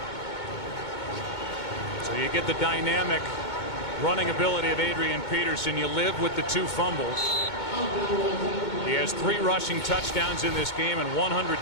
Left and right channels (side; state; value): right; late; 2.2 ms